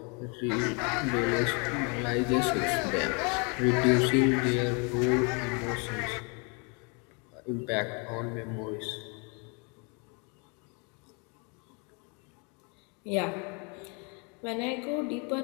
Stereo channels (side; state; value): right; quieter; 33.6 dB